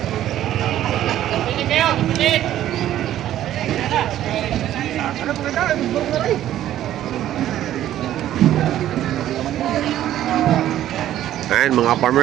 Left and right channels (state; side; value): quieter; left; 12.4 dB